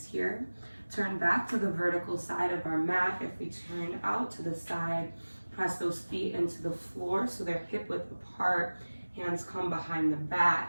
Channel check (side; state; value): both; inverted; correlation -1.00